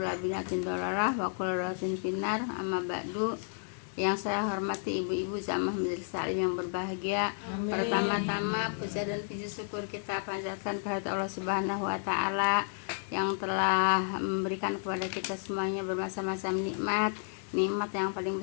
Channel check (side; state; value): right; silent; digital silence